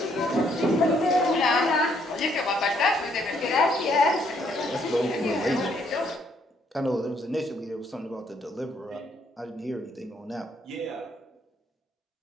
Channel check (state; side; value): normal; both; correlation 0.69